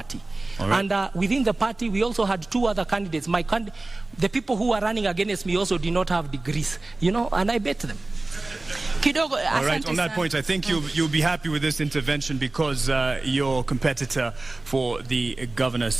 Right. And within the party, we also had two other candidates. The people who were running against me also did not have degrees, and I bet them. All right, on that point, I think you'll be happy with this intervention because your competitor for the governor's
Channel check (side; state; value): left; quieter; 3.0 dB